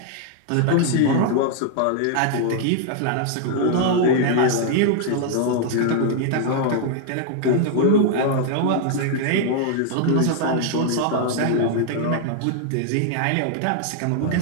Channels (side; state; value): both; different; correlation 0.00